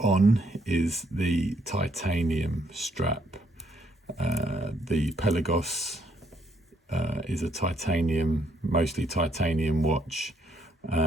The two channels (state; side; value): normal; both; correlation 0.71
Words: is the titanium strap. The Pelagos is a mostly titanium watch.